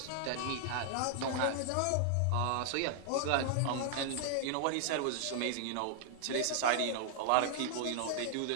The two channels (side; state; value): both; different; correlation 0.00